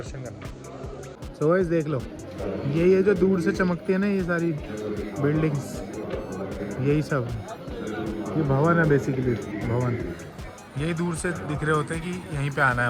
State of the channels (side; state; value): both; identical; correlation 1.00